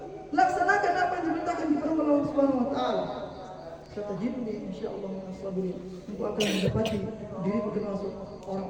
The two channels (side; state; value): both; identical; correlation 1.00